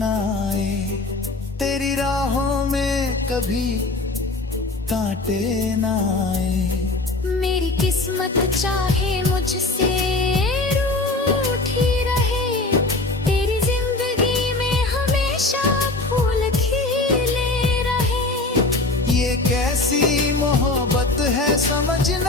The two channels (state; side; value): quieter; right; 3.1 dB